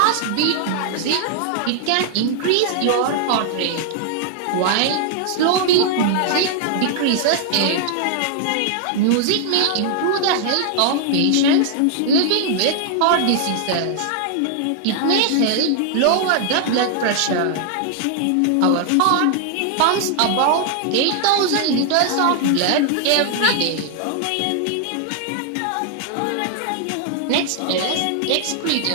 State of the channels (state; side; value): different; both; correlation 0.00